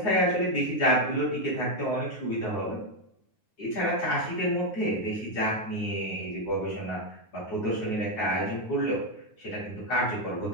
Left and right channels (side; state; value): right; late; 9.5 ms